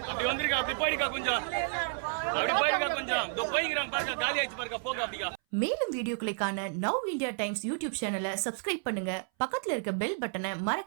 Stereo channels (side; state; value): left; silent; 57 dB below the other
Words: அப்படி வந்திருக்கா அப்படி போயிருக்கா கொஞ்சம் காலி ஆயிடுச்சு பாருங்க போக அப்படியா. மேலும் வீடியோக்களை காண நவ் இந்தியா டைம்ஸ் யூடியூப் சேனலை சப்ஸ்கிரைப் பண்ணுங்க. பக்கத்துல இருக்க பெல் பட்டனை